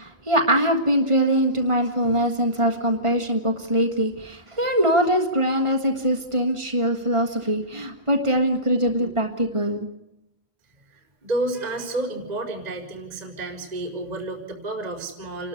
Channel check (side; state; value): left; late; 1.5 ms